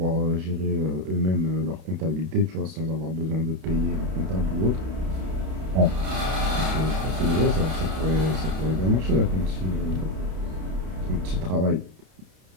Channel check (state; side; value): late; left; 32 ms